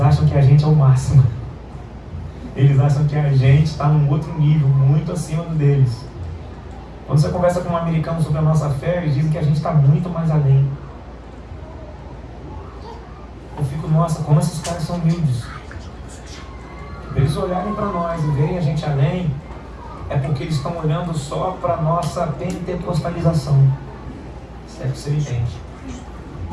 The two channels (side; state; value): both; identical; correlation 1.00